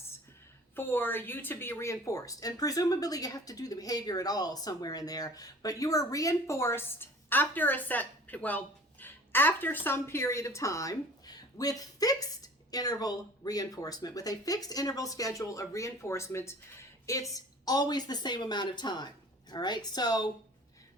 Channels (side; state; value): both; normal; correlation 0.46